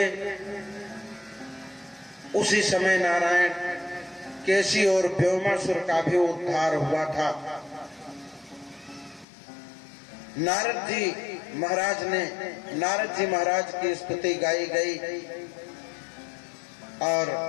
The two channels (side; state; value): right; drops out; at 9.2 s